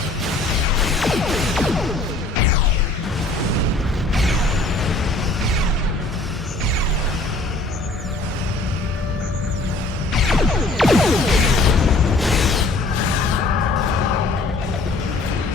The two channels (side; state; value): right; quieter; 3.1 dB